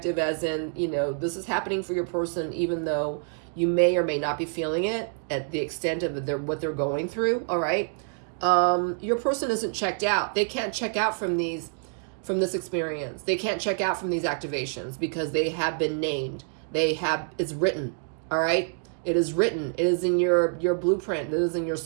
as in, you know, this is happening for your person, even though you may or may not be feeling it at the extent of what they're going through. All right. Your person isn't checked out. They can't check out from this experience. They can't check out from these activations because they have been named. It's written. All right. It is written. It is in your blueprint. It is in your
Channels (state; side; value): silent; left; 60 dB below the other